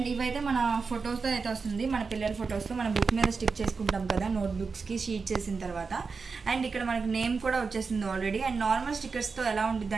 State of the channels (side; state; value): left; quieter; 4.8 dB